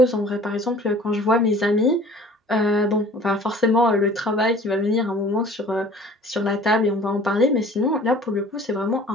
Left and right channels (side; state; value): both; normal; correlation 0.48